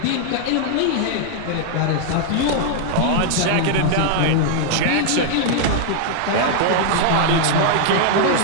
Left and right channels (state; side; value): different; both; correlation 0.00